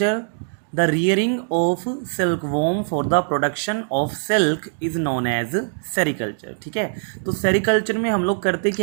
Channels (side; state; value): left; silent; digital silence